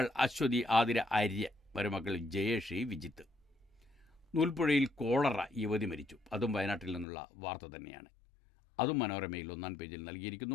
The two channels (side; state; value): right; drops out; at 7.1 s